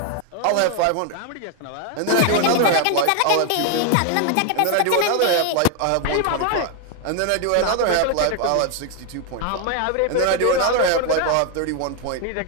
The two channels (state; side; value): different; both; correlation 0.00